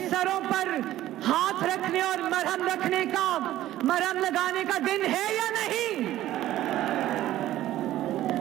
सरों पर हाथ रखने और मरहम रखने का मरहम लगाने का दिन है या नहीं?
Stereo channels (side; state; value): left; quieter; 14.1 dB